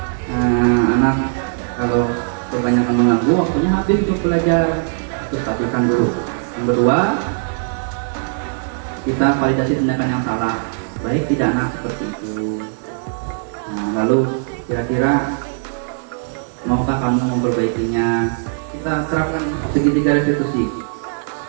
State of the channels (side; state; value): left; silent; 66 dB below the other